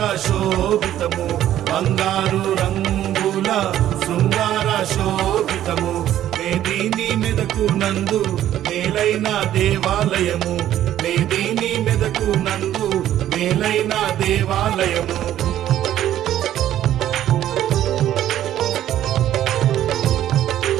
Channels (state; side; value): quieter; left; 12.1 dB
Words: శోభితము, బంగారు రంగుల శృంగార శోభితము. మేదిని మెదకు నందు మేలైన దేవాలయము, మేదిని మెదకు నందు మేలైన దేవాలయము.